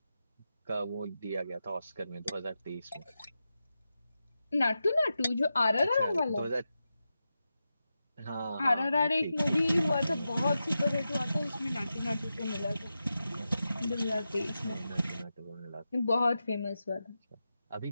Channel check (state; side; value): inverted; both; correlation -0.91